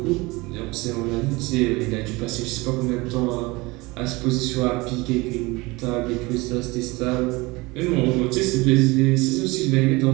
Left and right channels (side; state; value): left; quieter; 23.3 dB